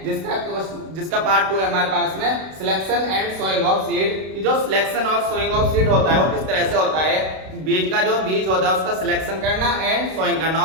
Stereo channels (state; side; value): late; left; 32 ms